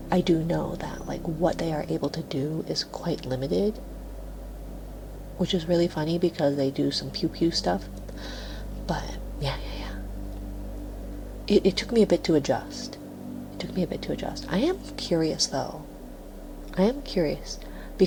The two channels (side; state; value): both; identical; correlation 1.00